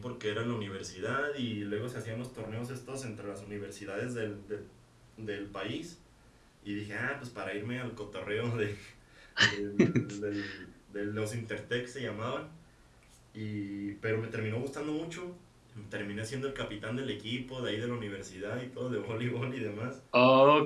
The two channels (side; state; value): both; identical; correlation 1.00